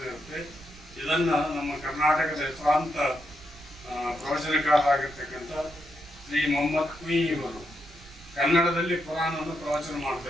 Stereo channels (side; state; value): right; noise; rumble, 22 dB below the sound